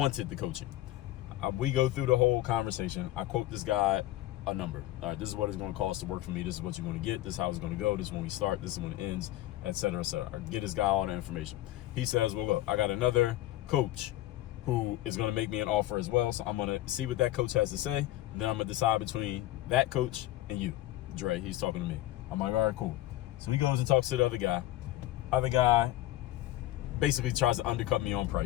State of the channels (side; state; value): right; quieter; 15.2 dB